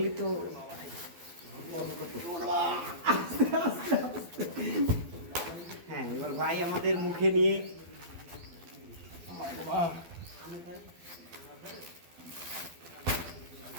তো হ্যাঁ, এবার ভাই আমাদের মুখে নিয়ে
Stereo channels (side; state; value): left; late; 12 ms